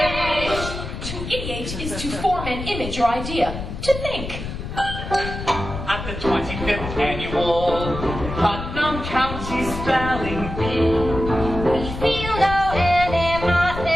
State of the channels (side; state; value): left; noise; rumble, 7 dB below the sound